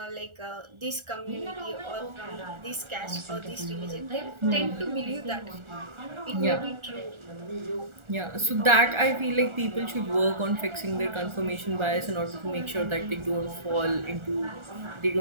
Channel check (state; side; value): late; left; 1.4 ms